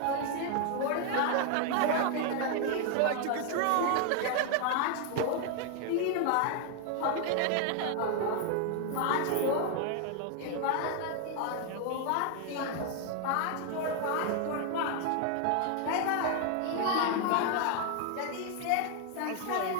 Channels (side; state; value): both; different; correlation 0.00